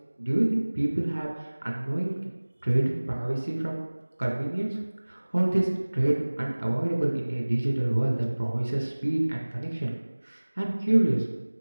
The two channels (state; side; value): inverted; both; correlation -1.00